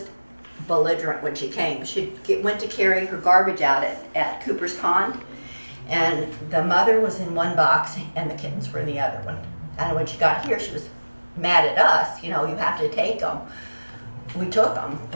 belligerent when she came. She went to carry her garbage out at Cooper's Pond, and the mother was in one box and the kittens were in the other one. And when she got here, she was mad at us. You know, you have to take them. We took them,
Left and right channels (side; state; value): both; inverted; correlation -1.00